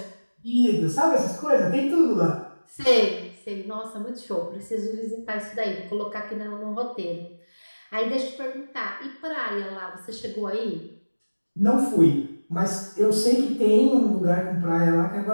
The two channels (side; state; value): both; inverted; correlation -1.00